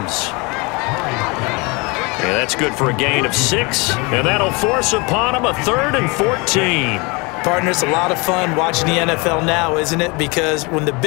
And that's good for a gain of 6. And that'll force upon him a 3rd and 14. Partner, it's a lot of fun watching the NFL now, isn't it? Because when the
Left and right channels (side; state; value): right; quieter; 28.0 dB